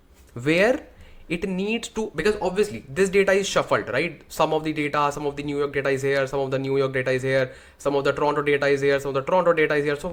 where it needs to, because obviously this data is shuffled, right? Some of the data, some of the New York data is here, some of the New York data is here, some of the Toronto data is here, some of the Toronto data is here. So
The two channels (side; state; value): both; identical; correlation 1.00